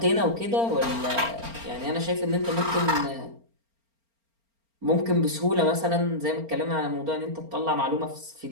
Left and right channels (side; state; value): left; late; 4.4 ms